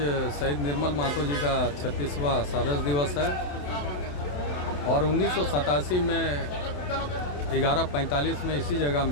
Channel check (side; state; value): right; late; 28 ms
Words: शहीद निर्मल महतो जी का 36वां शहादत दिवस है और 1987 में 11:45 में इसी जगह